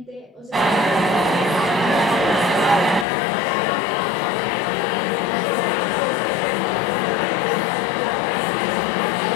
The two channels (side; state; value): right; drops out; at 3.1 s